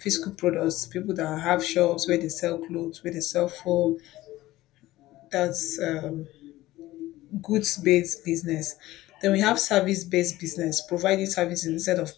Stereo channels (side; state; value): right; quieter; 16.7 dB